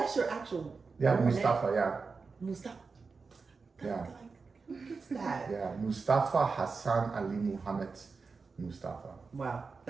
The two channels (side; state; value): left; quieter; 4.6 dB